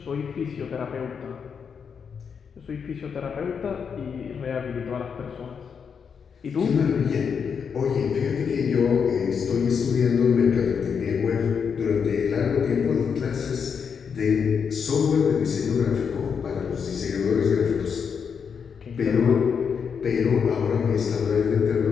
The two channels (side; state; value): right; quieter; 6.6 dB